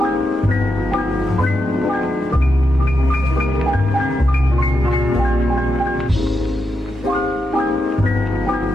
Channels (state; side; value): normal; both; correlation 0.85